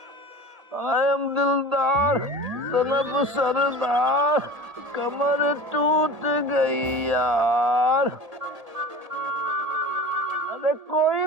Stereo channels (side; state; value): left; late; 1.7 ms